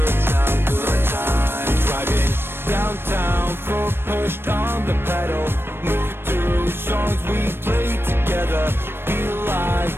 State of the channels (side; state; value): left; late; 0.11 ms